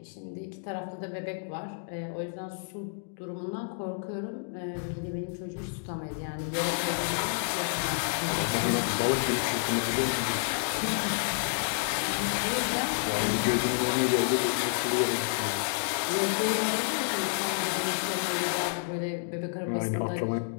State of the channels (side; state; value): right; silent; digital silence